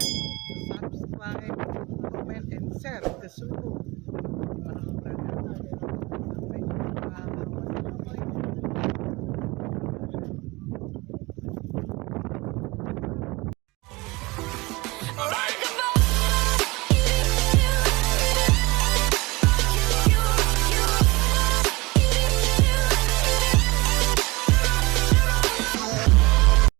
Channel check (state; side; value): quieter; left; 23.6 dB